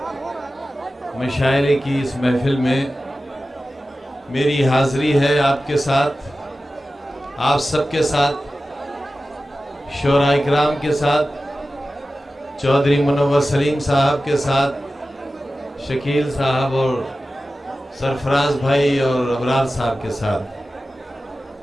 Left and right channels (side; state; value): both; normal; correlation 0.95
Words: मशायरे की इस महफिल में मेरी हाज़री है आपके साथ, आप सबके साथ, शोरा इकराम के साथ, चौधरी मुनव्वर सलीम साहब के साथ, शकील साहब और सरफराज भाई और अबरार साहब के साथ।